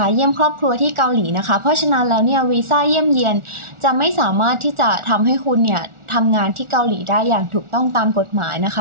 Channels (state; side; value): late; left; 1.4 ms